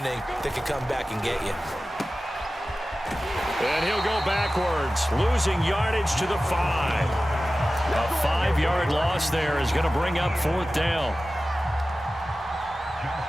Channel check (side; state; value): both; normal; correlation 0.95